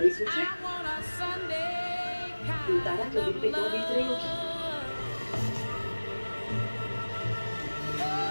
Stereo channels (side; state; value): both; inverted; correlation -1.00